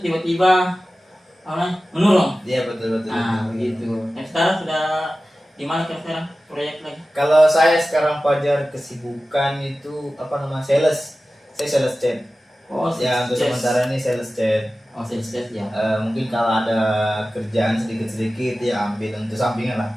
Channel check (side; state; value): both; normal; correlation 0.95